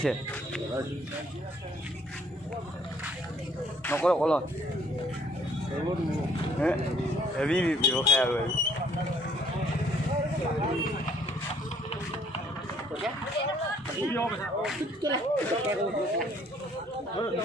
নকৰো কলত হেভি ব্যৱসায় আৰু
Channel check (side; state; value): both; normal; correlation 0.62